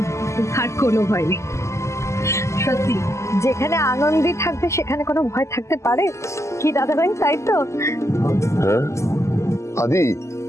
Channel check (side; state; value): right; late; 0.14 ms